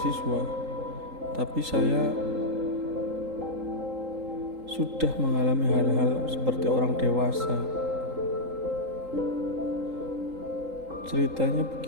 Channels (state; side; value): late; left; 3.8 ms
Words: tapi saya sudah mengalami hal-hal seperti orang dewasa. Ceritanya